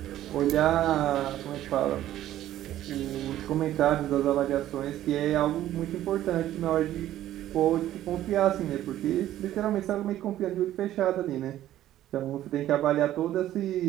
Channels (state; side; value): quieter; left; 13.1 dB